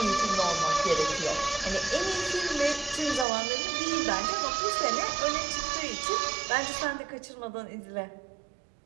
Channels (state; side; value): drops out; left; at 3.2 s